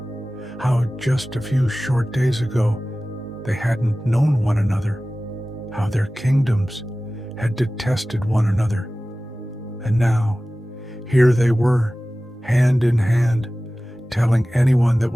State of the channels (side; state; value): both; normal; correlation 0.97